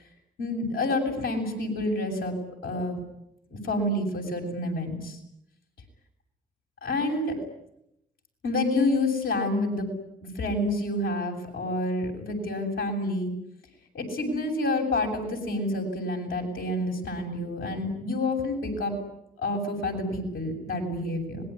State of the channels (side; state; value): both; normal; correlation 0.27